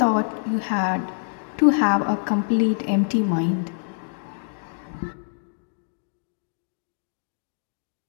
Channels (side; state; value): right; silent; digital silence